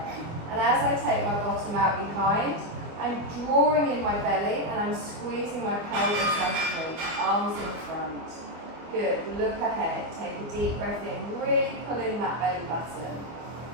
And as I take my bottom out behind, I'm drawing in my belly and I'm squeezing my pelvis underneath, arms in front. Good, look ahead, take a deep breath in, really pull in that belly button.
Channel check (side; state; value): left; late; 24 ms